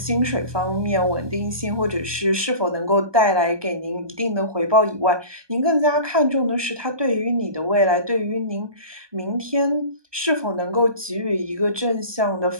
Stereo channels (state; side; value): late; left; 1.2 ms